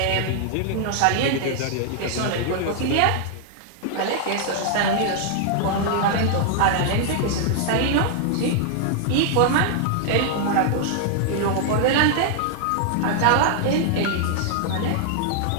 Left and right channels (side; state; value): both; different; correlation -0.01